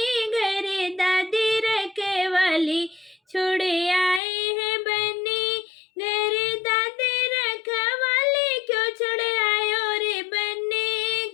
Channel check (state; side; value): drops out; right; at 4.2 s